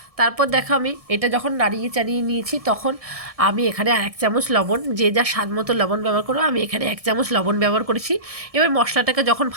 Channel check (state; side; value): late; left; 1.6 ms